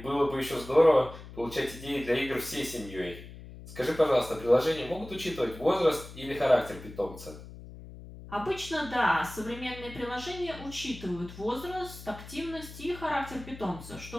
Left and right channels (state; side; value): noise; left; hum, 15 dB below the sound